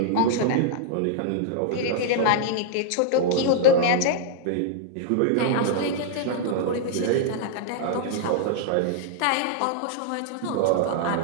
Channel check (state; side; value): different; both; correlation -0.01